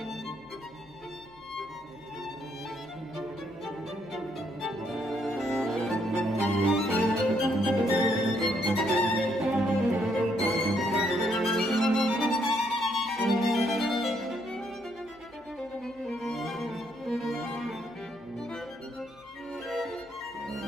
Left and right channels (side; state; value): left; noise; hum, 28 dB below the sound